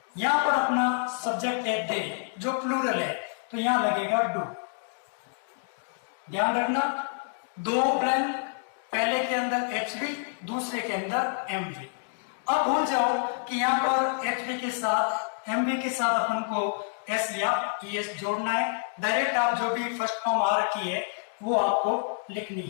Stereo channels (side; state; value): right; silent; digital silence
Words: यहाँ पर अपना सब्जेक्ट है दे जो प्लूरल है तो यहां लगेगा डू। ध्यान रखना, दो ब्लैंक, पहले के अंदर एच बी, दूसरे के अंदर एम बी। अब भूल जाओ कि यहाँ पर एच बी के साथ एम बी के साथ अपन को एस या ई एस जोड़ना है। डायरेक्ट आप जो भी फर्स्ट फॉर्म आ रखी है वो आपको लिखनी